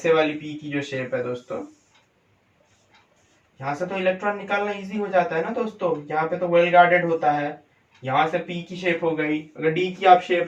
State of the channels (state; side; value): identical; both; correlation 1.00